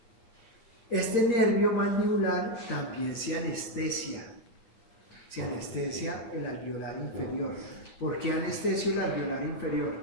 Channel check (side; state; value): right; late; 8.8 ms